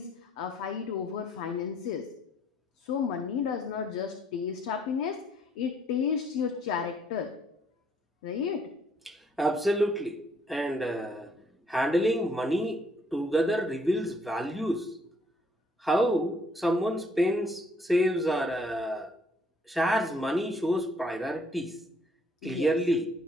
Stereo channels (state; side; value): normal; both; correlation 0.65